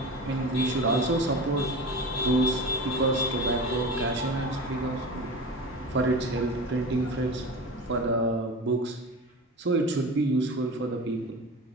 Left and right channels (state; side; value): normal; both; correlation 0.31